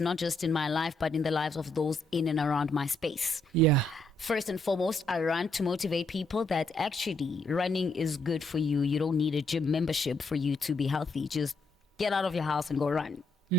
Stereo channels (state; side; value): normal; both; correlation 0.75